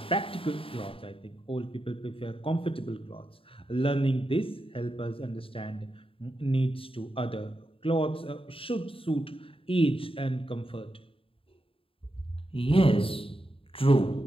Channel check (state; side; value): late; right; 0.27 ms